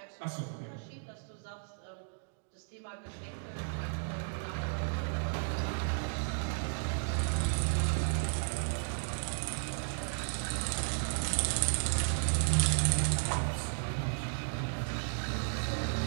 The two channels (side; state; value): left; silent; digital silence